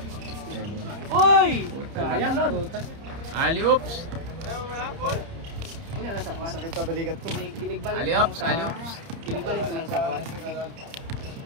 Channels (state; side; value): late; left; 30 ms